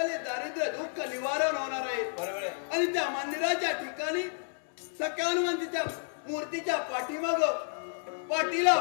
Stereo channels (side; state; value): right; silent; digital silence